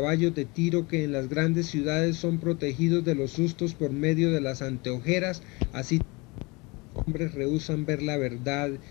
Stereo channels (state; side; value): quieter; right; 26.3 dB